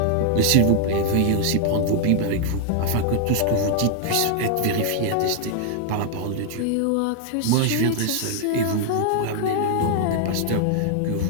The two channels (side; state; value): both; different; correlation 0.00